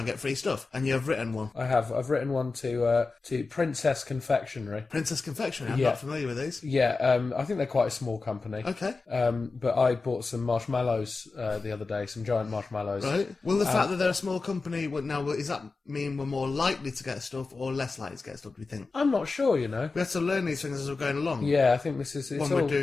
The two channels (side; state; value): right; quieter; 4.0 dB